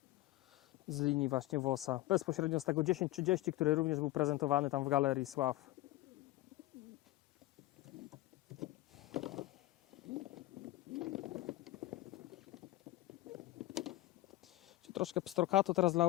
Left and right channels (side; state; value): right; quieter; 17.2 dB